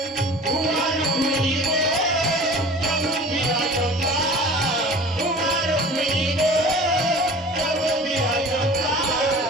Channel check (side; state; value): both; normal; correlation 0.42